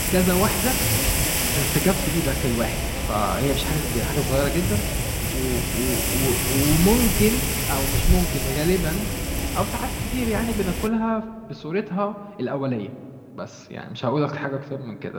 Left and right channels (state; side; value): identical; both; correlation 1.00